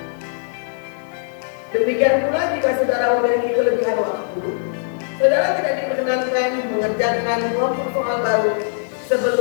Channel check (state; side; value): silent; right; digital silence